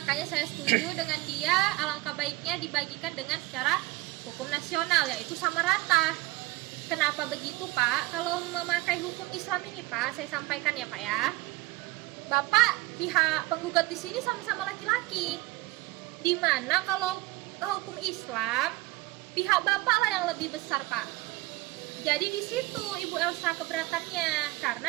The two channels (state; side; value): quieter; left; 20.4 dB